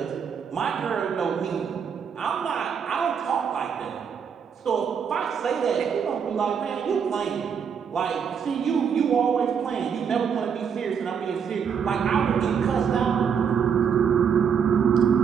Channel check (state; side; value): quieter; left; 7.1 dB